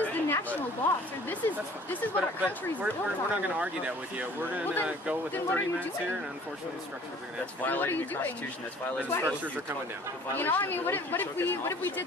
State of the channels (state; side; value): normal; both; correlation 0.52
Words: is the national law, sir. This is what our country's we're built on. not going to argue that with you. We're going to Well, then- go with then the what are 30 you minutes doing? here, and unfortunately, the structures are going to have to What are Violating you the doing? Constitution. That's The violating Why? structures are coming down. You know, I mean, what if we